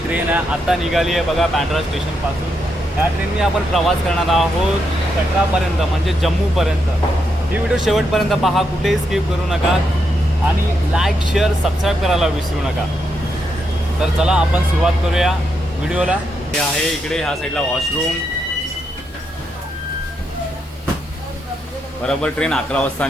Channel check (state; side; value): normal; both; correlation 0.81